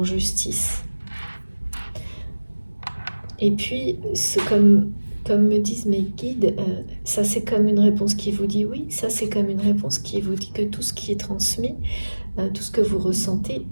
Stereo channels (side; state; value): both; inverted; correlation -1.00